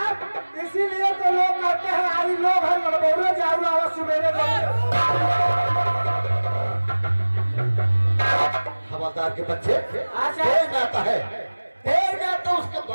इसीलिए तो लोग कहते हैं आई लोग है लड़बोले जाऊ आवाज सुबेरे हवलदार के बच्चे, अच्छा। देर में आता है, देर में आता उसके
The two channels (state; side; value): inverted; both; correlation -1.00